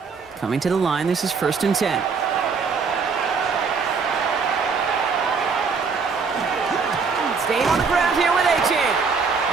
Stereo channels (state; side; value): quieter; left; 5.2 dB